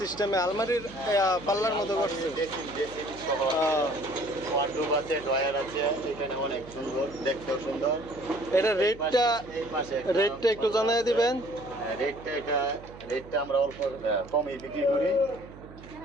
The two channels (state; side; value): noise; right; hum, 17 dB below the sound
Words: আলমারির পাল্লার মতো করছে? ওয়ার্ডরোব আছে, ড্রয়ার আছে, এখানে অনেক সুন্দর, দেখতেও সুন্দর। এটা রেটটা একটু জানাই দিবেন। রেটটা আমরা অল্প কমই বিক্রি করি,